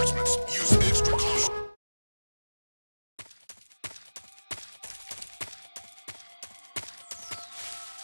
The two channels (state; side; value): inverted; both; correlation -1.00